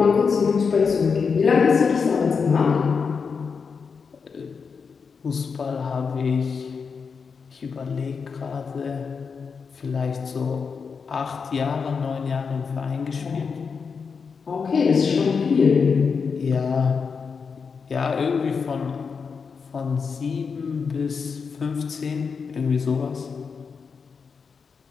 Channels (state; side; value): quieter; right; 5.6 dB